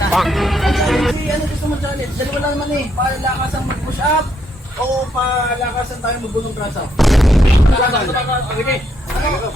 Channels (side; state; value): both; normal; correlation 0.74